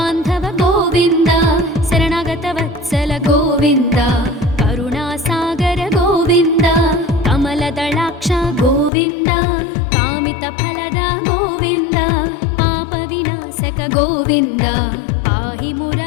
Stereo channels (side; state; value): right; drops out; at 8.9 s